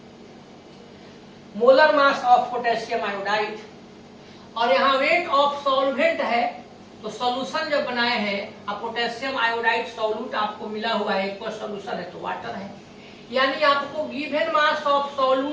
Molar mass of potassium iodide, और यहाँ वेट ऑफ सॉल्वेंट है। तो सॉल्यूशन जब बनाए हैं, अब पोटेशियम आयोडाइड सॉल्यूट आपको मिला हुआ है, एक सॉल्यूशन है तो वाटर है। यानी आपको गिवन मास ऑफ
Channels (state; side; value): identical; both; correlation 1.00